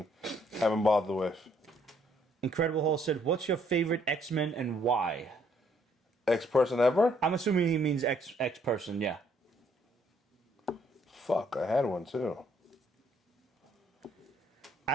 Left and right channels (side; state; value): both; normal; correlation 0.67